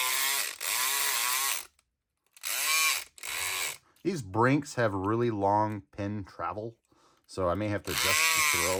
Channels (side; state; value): both; identical; correlation 1.00